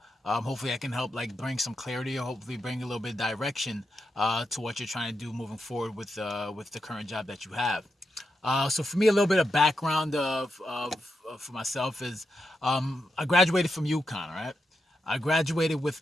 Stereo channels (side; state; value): both; normal; correlation 0.85